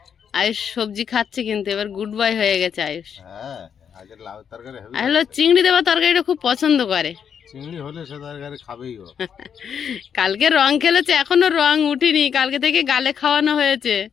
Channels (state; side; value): quieter; right; 7.7 dB